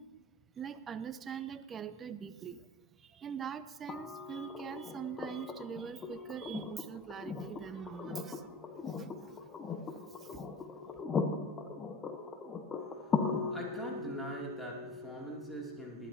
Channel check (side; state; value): both; normal; correlation 0.39